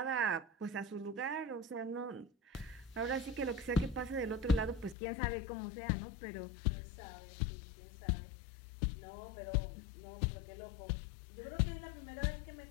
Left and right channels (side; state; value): right; drops out; at 5.0 s